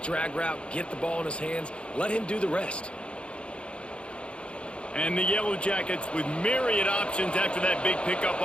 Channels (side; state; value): right; late; 0.058 ms